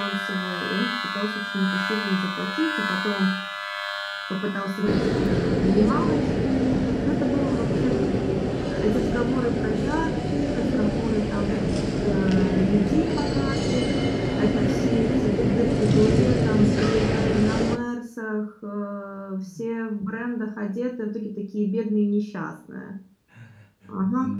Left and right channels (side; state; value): both; identical; correlation 1.00